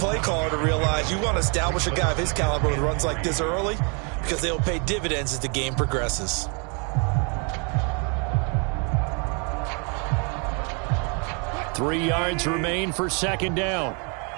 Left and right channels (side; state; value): left; quieter; 35.5 dB